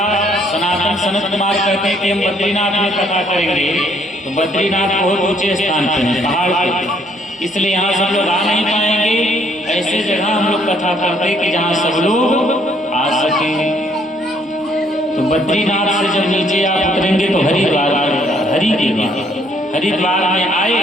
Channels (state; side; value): normal; both; correlation 0.66